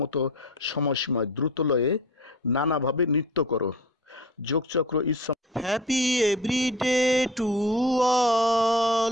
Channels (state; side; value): normal; both; correlation 0.39